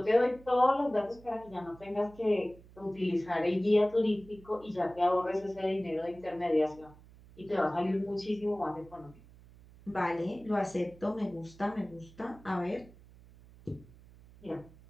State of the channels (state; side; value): noise; right; hum, 22 dB below the sound